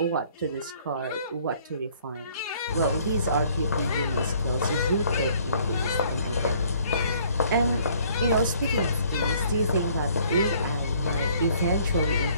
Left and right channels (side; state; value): both; inverted; correlation -0.60